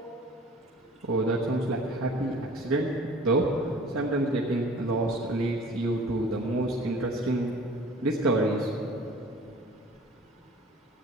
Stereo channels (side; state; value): both; normal; correlation 0.47